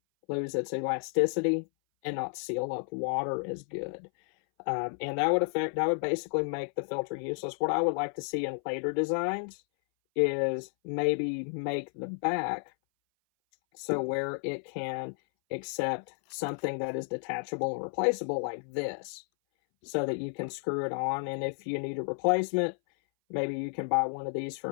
lose its elasticity and not seal up water as good. And that would basically make the filter useless. What I would like to see in later designs is maybe make the back so where it can accept something that is detachable and replaceable like this, so that you can screw it on, and if you need a replacement, maybe you can buy one of these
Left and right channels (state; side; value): silent; right; 57 dB below the other